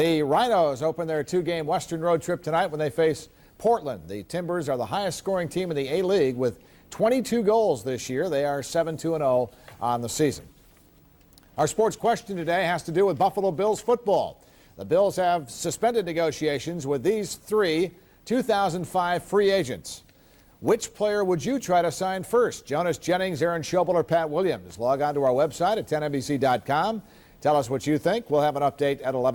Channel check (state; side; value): identical; both; correlation 1.00